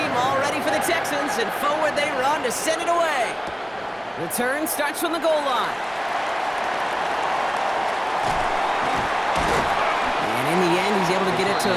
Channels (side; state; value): both; identical; correlation 1.00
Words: all ready for the Texans, and forward they run to send it away. Return starts from the goal line. And in the end, he's able to get it to